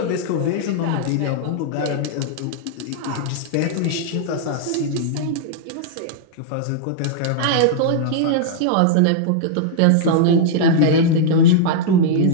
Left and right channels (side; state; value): both; different; correlation -0.01